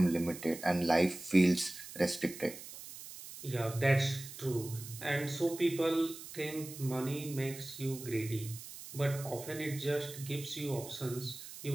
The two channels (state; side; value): noise; right; hiss, 13 dB below the sound